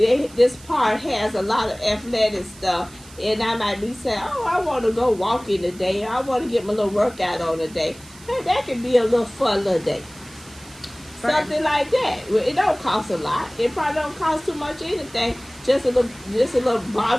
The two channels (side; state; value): right; noise; hiss, 21 dB below the sound